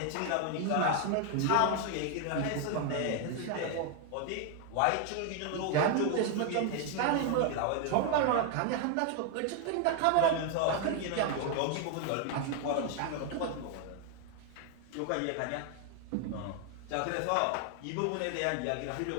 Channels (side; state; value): both; different; correlation 0.00